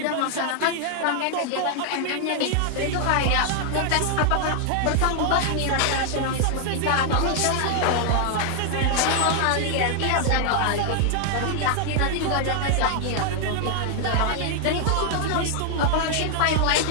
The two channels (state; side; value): different; both; correlation 0.00